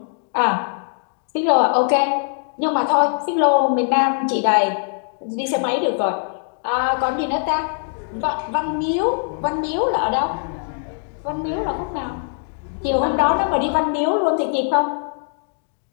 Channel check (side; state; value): right; silent; digital silence